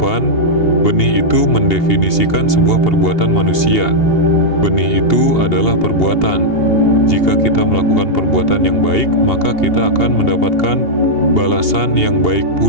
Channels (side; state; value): right; late; 2.8 ms